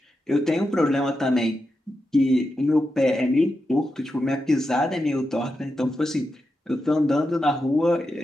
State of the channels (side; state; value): both; normal; correlation 0.88